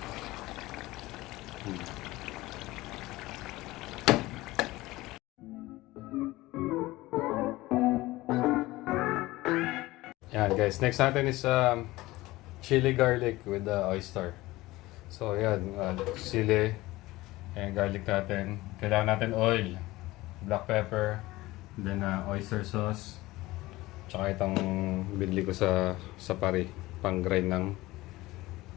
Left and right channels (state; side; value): quieter; right; 18.9 dB